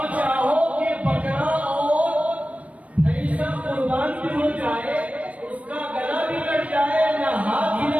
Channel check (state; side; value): late; left; 0.066 ms